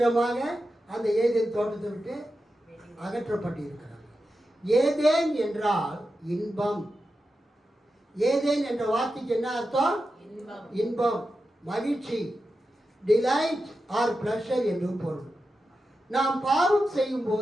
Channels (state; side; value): normal; both; correlation 0.90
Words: அந்த ஏதேன் தோட்டத்தை விட்டு அகற்றப்பட்டு இருக்கிறாங்க. ஏதேன் என்றால் இன்பம். ஏதேன் என்ற வார்த்தைக்கு என்ன அர்த்தம்? இன்பம், மகிழ்ச்சி, டிலைட் ஆர் பிளஷர் என்று பொருள். நாம் பாவம் செய்யும்